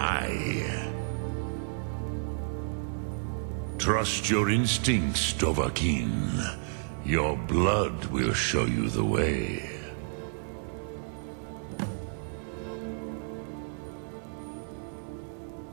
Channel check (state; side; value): silent; left; 55 dB below the other